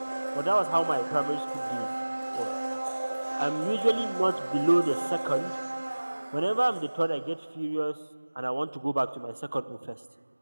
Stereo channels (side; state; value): both; inverted; correlation -1.00